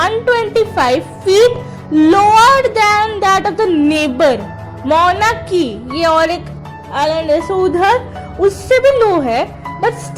feet lower than that of the neighbour मौना की, ये और एक आइलैंड है, सो उधर उससे भी लो है, but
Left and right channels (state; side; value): identical; both; correlation 1.00